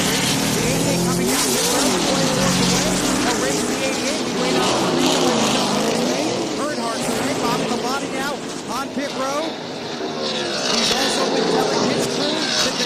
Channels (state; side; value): identical; both; correlation 1.00